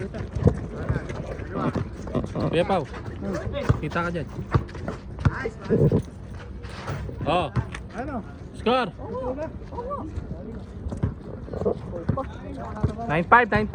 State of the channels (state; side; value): identical; both; correlation 1.00